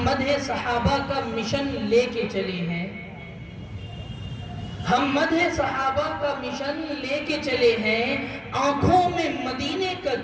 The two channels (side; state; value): both; identical; correlation 1.00